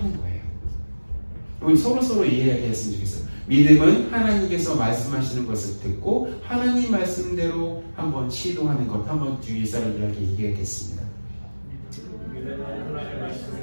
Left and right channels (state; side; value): inverted; both; correlation -1.00